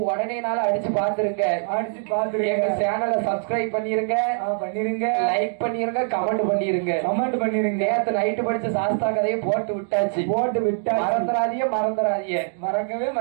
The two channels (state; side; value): silent; left; digital silence